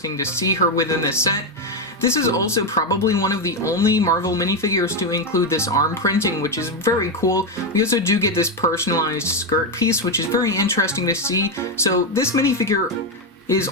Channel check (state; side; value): normal; both; correlation 0.07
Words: to see her within the set. This is also probably one of the only Marvel minifigures to include this arm printing, which is very cool. We also do get this personalized skirt piece, which is very interesting to see. So this minifigure is